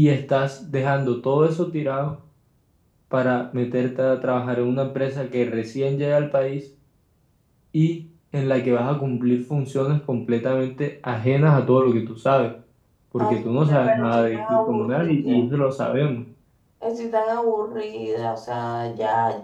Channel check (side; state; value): both; identical; correlation 1.00